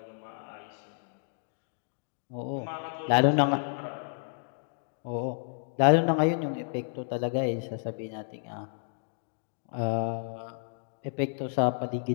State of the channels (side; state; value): right; silent; digital silence